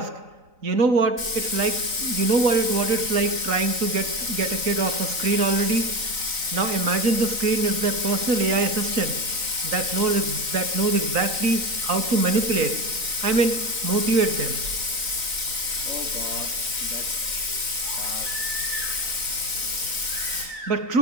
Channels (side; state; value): left; late; 3.9 ms